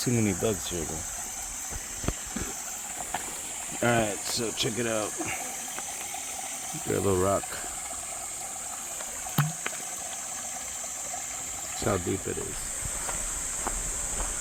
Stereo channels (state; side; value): identical; both; correlation 1.00